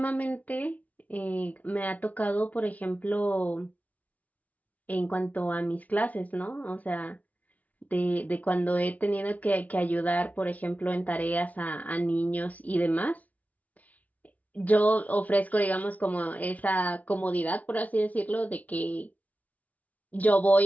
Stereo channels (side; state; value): right; late; 0.073 ms